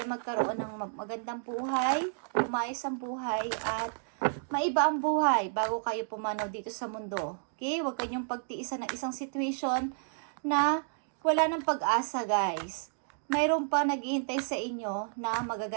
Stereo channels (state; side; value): silent; left; digital silence